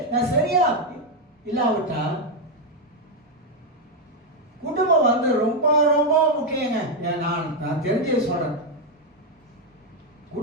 நான் சரியா இல்லாவிட்டா குடும்பம் வந்து ரொம்ப ரொம்ப முக்கியங்க. நான் தெரிஞ்சே சொல்றேன்,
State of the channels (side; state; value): both; normal; correlation 0.02